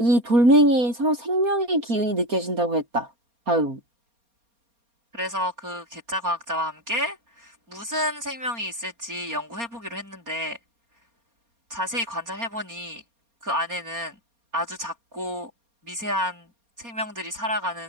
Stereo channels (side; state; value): left; late; 4.3 ms